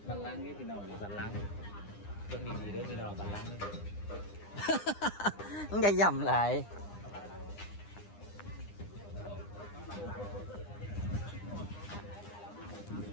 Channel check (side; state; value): right; late; 9.8 ms